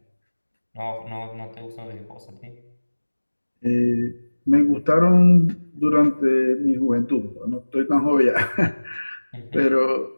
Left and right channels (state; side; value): inverted; both; correlation -1.00